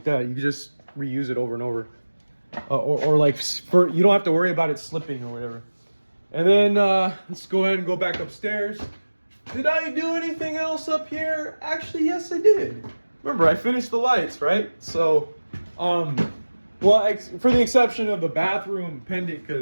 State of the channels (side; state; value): both; inverted; correlation -1.00